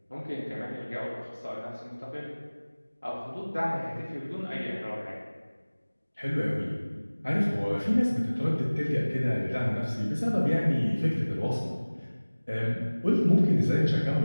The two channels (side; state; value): both; inverted; correlation -1.00